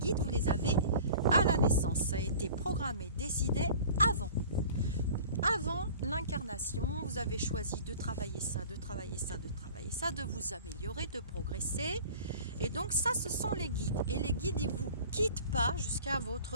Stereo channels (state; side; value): inverted; both; correlation -0.43